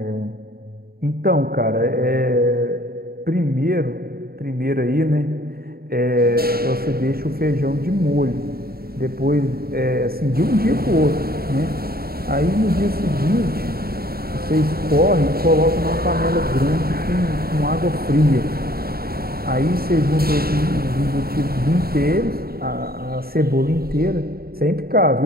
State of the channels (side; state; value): left; late; 0.44 ms